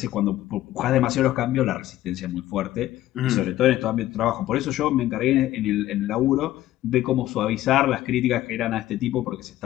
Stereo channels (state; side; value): quieter; right; 14.4 dB